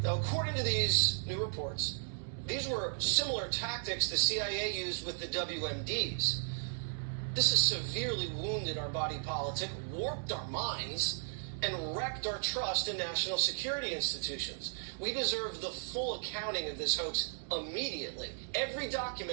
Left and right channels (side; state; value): left; silent; 54 dB below the other